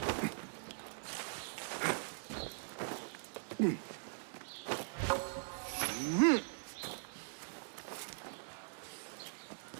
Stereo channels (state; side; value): silent; left; digital silence